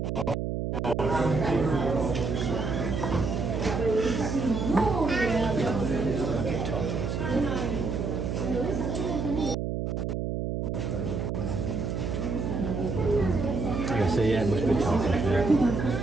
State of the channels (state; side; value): noise; right; hum, 2 dB below the sound